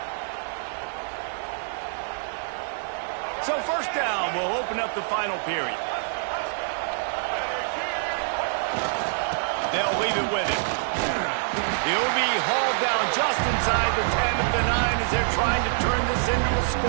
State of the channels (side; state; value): left; silent; 61 dB below the other